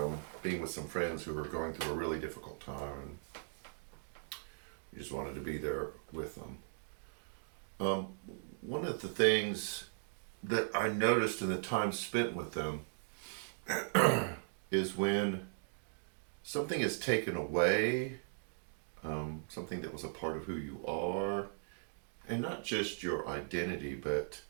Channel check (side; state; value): left; silent; digital silence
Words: being with some friends who were going through a really difficult time. We just wanted to be there with them. Um, One of the things that I noticed in the time spent with them is when something is taken away, something that was a part of who you are, and not just your identity, but